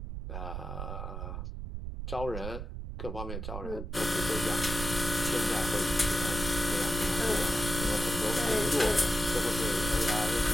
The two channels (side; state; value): right; noise; rumble, 6 dB below the sound